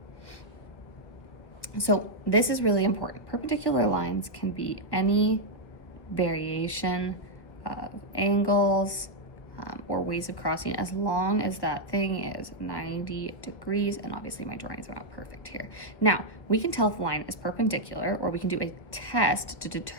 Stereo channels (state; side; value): late; right; 1.3 ms